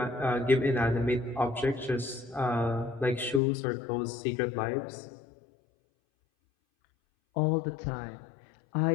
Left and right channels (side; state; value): right; drops out; at 3.4 s